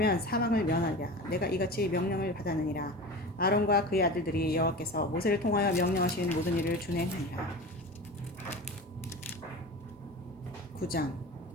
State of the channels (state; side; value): normal; both; correlation 0.32